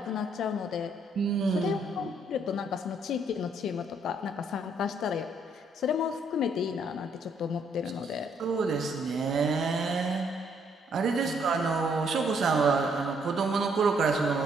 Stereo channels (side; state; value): both; normal; correlation 0.69